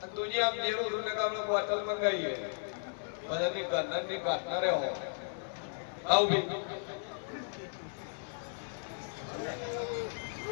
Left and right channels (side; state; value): right; silent; 54 dB below the other